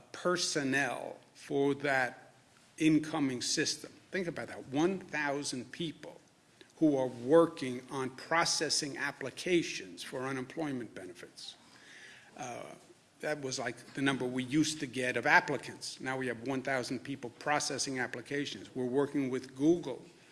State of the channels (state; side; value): identical; both; correlation 1.00